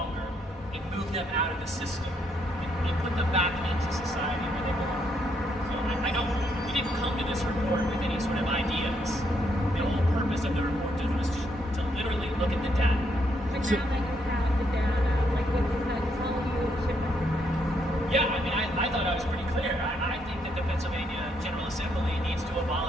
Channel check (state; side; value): normal; both; correlation 0.75